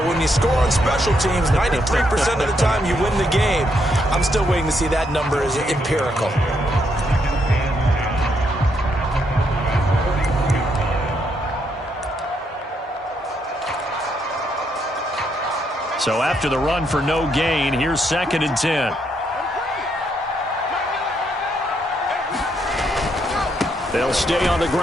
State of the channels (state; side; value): normal; both; correlation 0.76